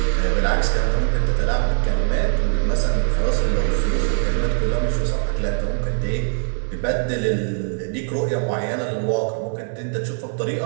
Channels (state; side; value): silent; left; digital silence